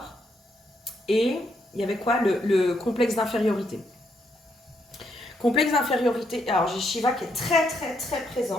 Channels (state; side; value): normal; both; correlation 0.76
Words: et il y avait quoi? Le complexe d'infériorité. Complexe d'infériorité, alors j'ai Shiva qui est très très très